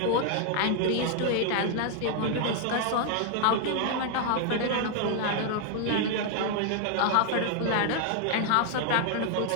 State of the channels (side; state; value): both; different; correlation 0.00